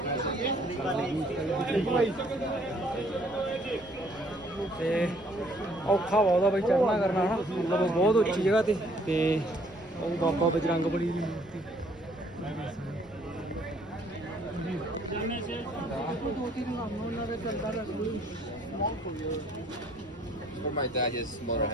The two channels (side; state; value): right; noise; rumble, 23 dB below the sound